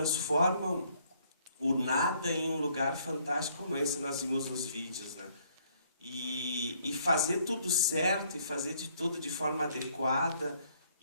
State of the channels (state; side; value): inverted; both; correlation -0.66